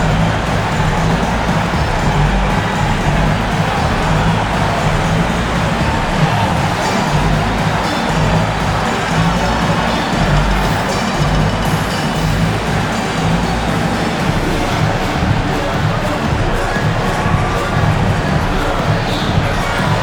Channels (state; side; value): identical; both; correlation 1.00